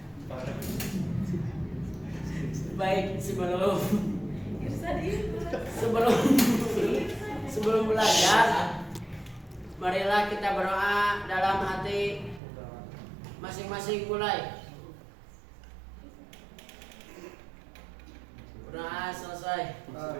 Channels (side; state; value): left; drops out; at 12.4 s